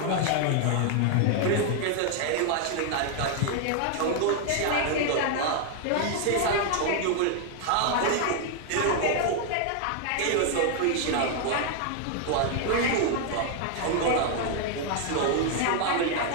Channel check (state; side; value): different; both; correlation 0.00